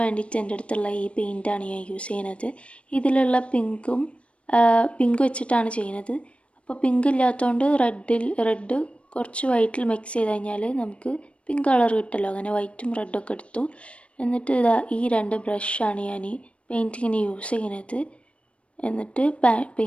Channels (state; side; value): late; right; 0.061 ms